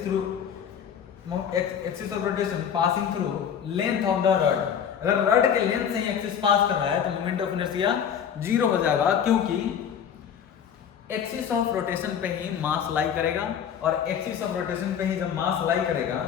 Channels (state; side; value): quieter; right; 8.3 dB